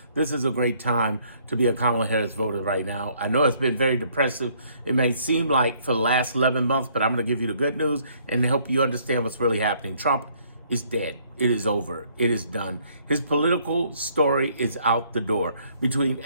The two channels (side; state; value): both; inverted; correlation -0.65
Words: This is a great time to be a Kamala Harris voter right now. I know it's been very depressive. It may seem like for the last 11 months, but I'm going to give you the good news and help you understand what's really happening. Trump is dead. It is over. It is done. His political story is out the door. Between